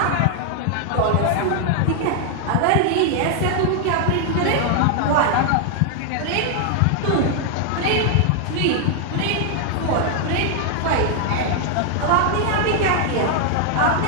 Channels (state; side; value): different; both; correlation 0.00